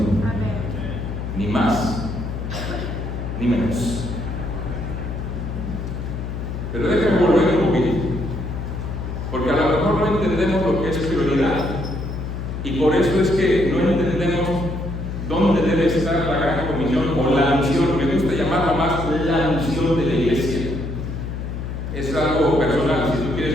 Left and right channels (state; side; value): noise; left; hum, 5 dB below the sound